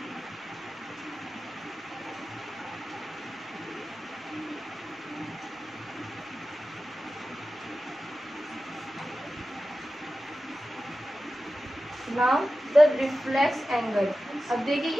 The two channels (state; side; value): normal; both; correlation 0.94